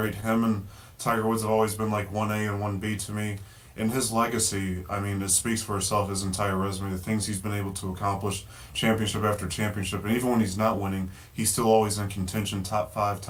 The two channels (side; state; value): both; identical; correlation 1.00